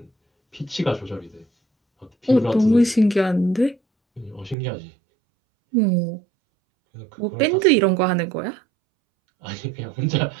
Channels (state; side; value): drops out; left; at 4.5 s